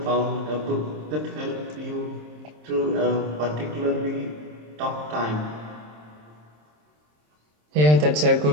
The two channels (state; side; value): late; left; 27 ms